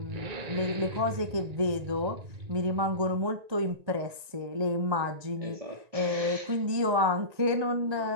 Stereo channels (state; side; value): late; left; 1.9 ms